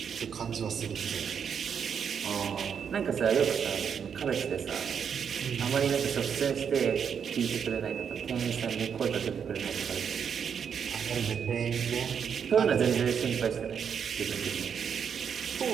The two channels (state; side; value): quieter; left; 7.3 dB